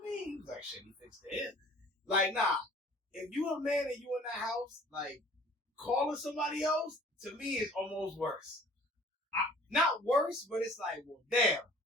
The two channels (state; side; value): normal; both; correlation 0.50